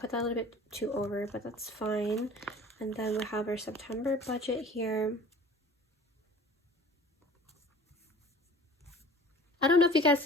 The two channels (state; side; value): normal; both; correlation 0.45